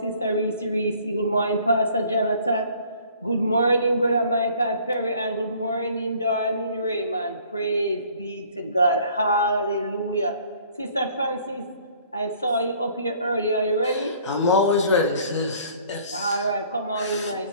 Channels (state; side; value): inverted; both; correlation -0.56